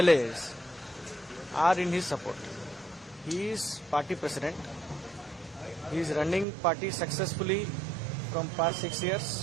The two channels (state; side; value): drops out; left; at 6.5 s